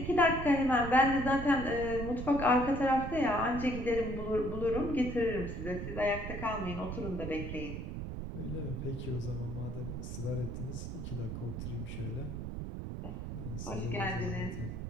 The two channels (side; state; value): right; noise; rumble, 6 dB below the sound